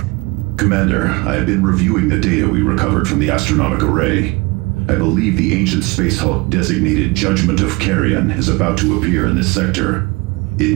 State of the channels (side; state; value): left; quieter; 24.9 dB